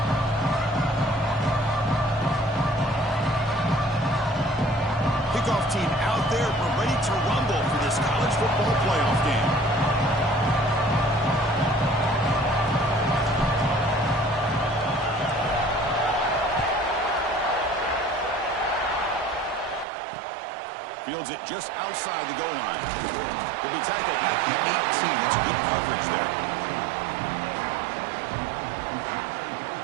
Team out there, we're ready to rumble for this college football playoff game. Fields it just outside the goal line. He'll be tackled at the 18. That's good coverage there.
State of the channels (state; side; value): drops out; left; at 19.9 s